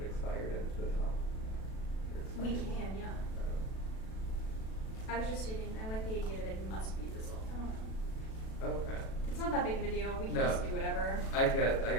expired at the top? Or We expired. can, yeah. I was just stating, I like the idea that it must be resolved. I don't know. Okay. It's not that big of a deal. We can No. just do whatever. I get what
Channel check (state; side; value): late; right; 37 ms